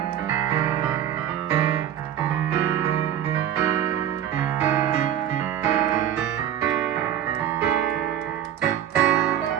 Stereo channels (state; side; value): quieter; left; 10.5 dB